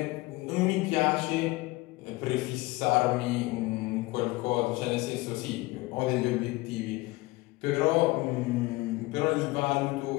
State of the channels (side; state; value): right; quieter; 21.4 dB